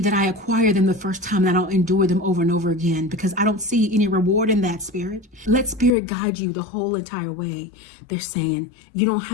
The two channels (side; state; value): right; drops out; at 5.9 s